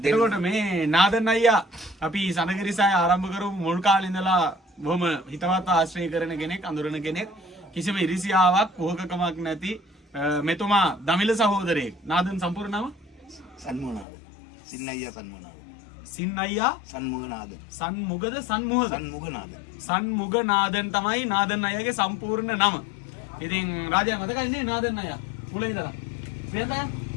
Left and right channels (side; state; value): right; drops out; at 14.1 s